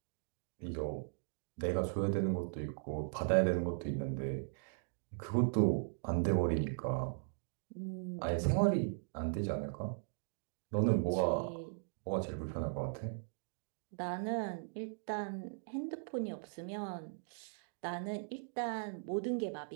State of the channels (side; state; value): left; silent; digital silence